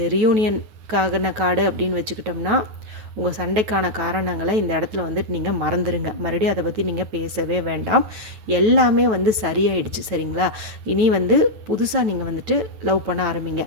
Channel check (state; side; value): late; left; 9.2 ms